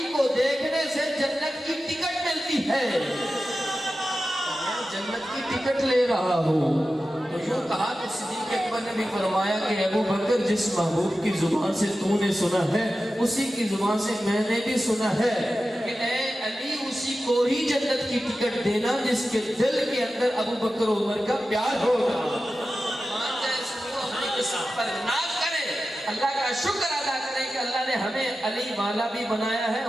کو دیکھنے سے جنت کی ٹکٹ ملتی ہے۔ میں جنت کی ٹکٹ لے رہا ہوں۔ تو یوں کہا کہ صدیق اکبر نے بھی فرمایا کہ ابو بکر، جس محبوب کی زبان سے تو نے سنا ہے اسی کی زبان سے میں نے بھی سنا ہے کہ اے علی، اسی کو ہی جنت کی ٹکٹ دینا جس کے دل کے اندر ابو بکر و عمر کا پیار ہوگا۔ مان جائے سنو، اپنی قسمت پر ناز کریں، اللہ کا شکر ادا کریں کہ اللہ نے ہمیں علی والا بھی بنایا ہے،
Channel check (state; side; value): normal; both; correlation 0.93